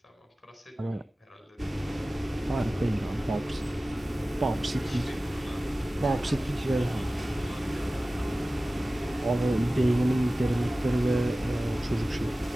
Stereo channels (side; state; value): both; normal; correlation 0.96